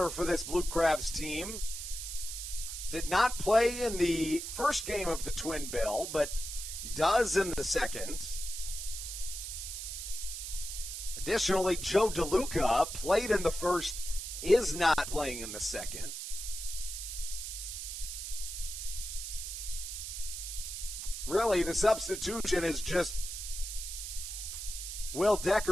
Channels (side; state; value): right; noise; hiss, 6 dB below the sound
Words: for this Blue Crabs team did not play in the first game of the Twin Bill, but does in the second. Additionally, Joe DeLuca played in the first, is not playing in the second. Really, the substitution is just Will